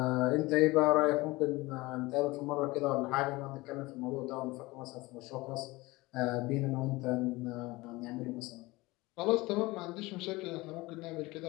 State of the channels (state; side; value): quieter; right; 21.5 dB